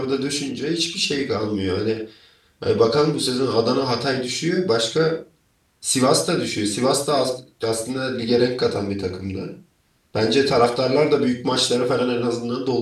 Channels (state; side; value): identical; both; correlation 1.00